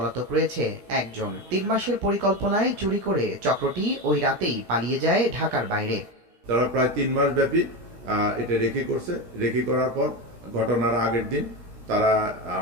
রয়েছে 1 জন। 3 মাসের পরিকল্পনায় চুরি করে চক্রটি ওই রাতেই পালিয়ে যায় ঢাকার বাইরে। তারা প্রায় 3 মাস ব্যাপী এটা রেকি করছে। রেকি করার পর ঘটনার আগের দিন তারা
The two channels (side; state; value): left; late; 17 ms